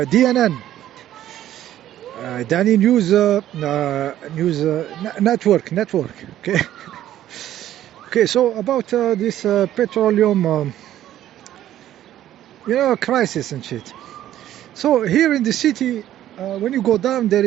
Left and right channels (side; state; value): left; quieter; 12.5 dB